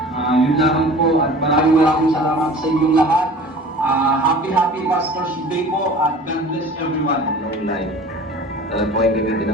Yun lang po at maraming salamat sa inyong lahat. Happy Pastor's Day po at God bless everyone. Long life. Alam po ay gamitin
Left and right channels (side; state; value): both; normal; correlation 0.43